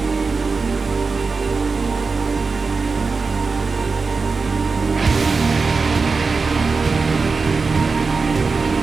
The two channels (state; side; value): quieter; left; 4.5 dB